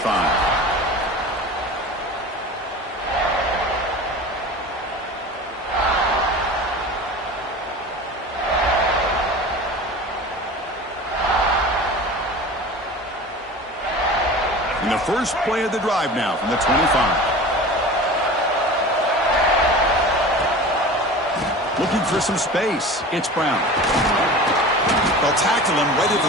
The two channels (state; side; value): normal; both; correlation 0.36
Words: In the first play of the drive now from the 25. Looking for some space. It's Brown. They'll tackle him right at